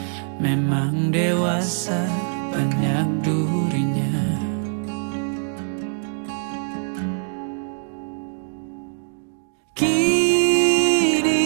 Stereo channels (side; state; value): left; silent; digital silence